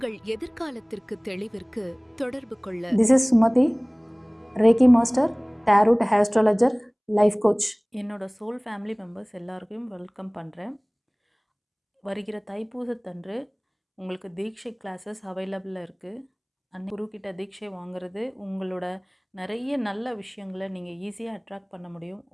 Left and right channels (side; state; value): both; identical; correlation 1.00